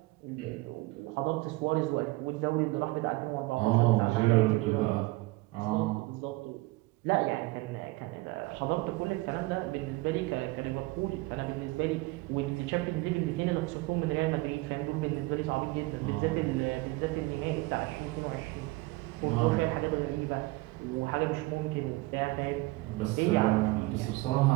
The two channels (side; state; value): left; quieter; 21.9 dB